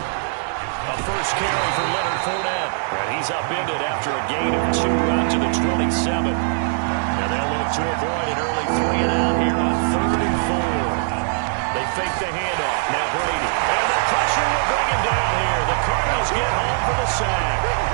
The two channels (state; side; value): silent; left; digital silence